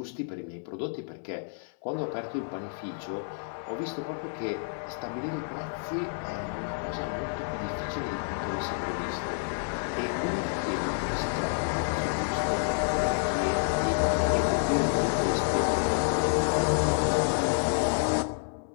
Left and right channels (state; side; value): silent; right; 58 dB below the other